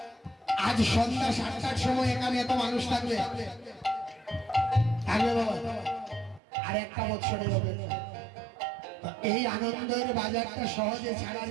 আজ সন্ধ্যা 7টার সময় এখানে এত মানুষ থাকবে থাকবে বাবা, আর একটা বছরে হবে। এই আনন্দের বাজারটা সহজে ছাড়ার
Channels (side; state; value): left; drops out; at 6.4 s